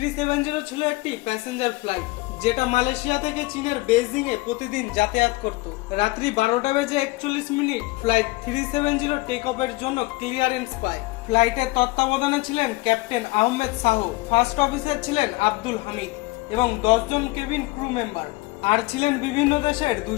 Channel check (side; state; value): right; quieter; 22.2 dB